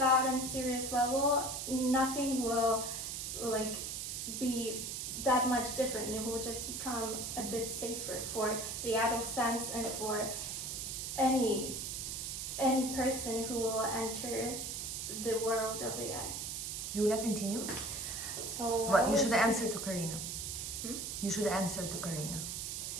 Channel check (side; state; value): right; noise; hiss, 4 dB below the sound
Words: on a serious level, nothing will like be that much different. It will just become a bit safer for the adolescents and for any person who will enter the world of AI. Julia, continue. So But you should answer to Karina. Hmm? You should answer to Karina.